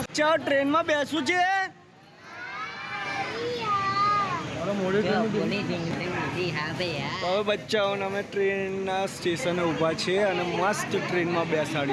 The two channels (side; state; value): both; identical; correlation 1.00